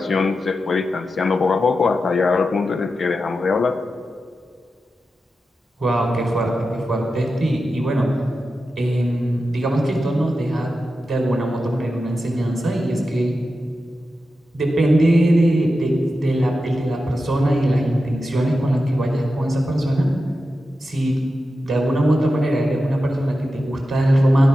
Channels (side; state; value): both; normal; correlation 0.91